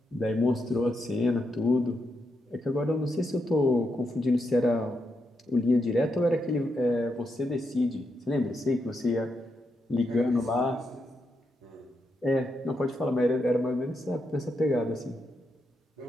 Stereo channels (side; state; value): both; normal; correlation 0.83